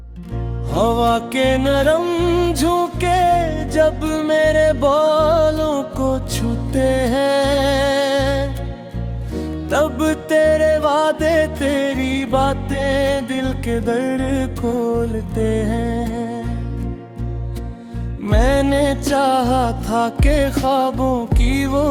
हवा के नरम झोंके जब मेरे बालों को छूते हैं, तब तेरे वादे तेरी बातें दिल के दर खोलते हैं। मैंने चाहा था कि ख्वाबों की वो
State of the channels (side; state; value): both; identical; correlation 1.00